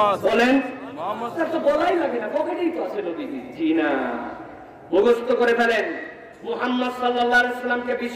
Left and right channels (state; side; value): identical; both; correlation 1.00